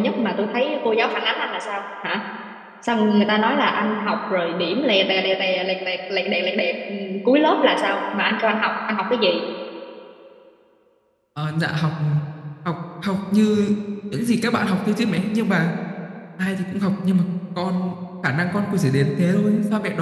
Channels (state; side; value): identical; both; correlation 1.00